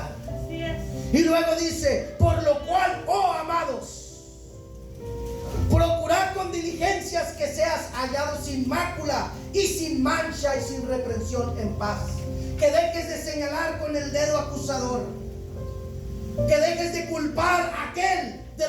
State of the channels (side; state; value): both; identical; correlation 1.00